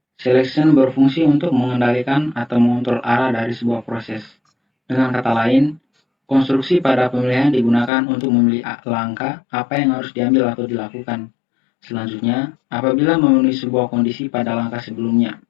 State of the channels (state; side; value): drops out; right; at 7.9 s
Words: Selection berfungsi untuk mengendalikan atau mengontrol arah dari sebuah proses. Dengan kata lain, konstruksi pada pemilihan digunakan untuk memilih langkah apa yang harus diambil atau dilakukan. Selanjutnya, apabila memenuhi sebuah kondisi pada langkah sebelumnya.